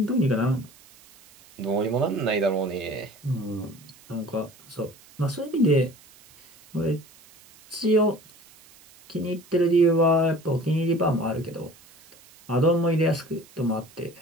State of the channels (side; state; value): right; noise; hiss, 25 dB below the sound